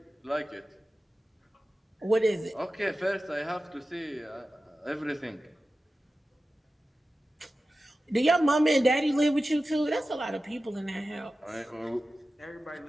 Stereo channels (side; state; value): both; normal; correlation 0.94